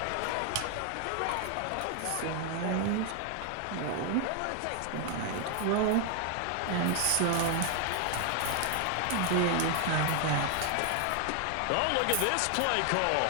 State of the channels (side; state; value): both; different; correlation 0.00